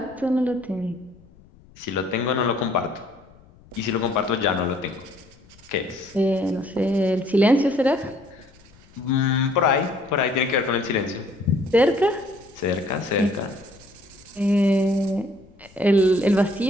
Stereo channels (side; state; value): left; noise; rumble, 27 dB below the sound